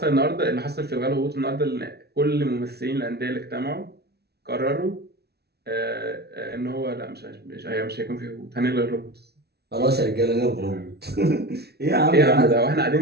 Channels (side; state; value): left; late; 0.48 ms